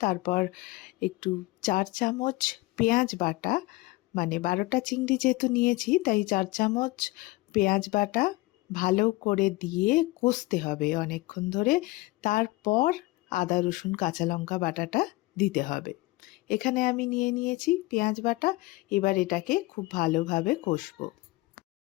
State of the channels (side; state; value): right; quieter; 21.0 dB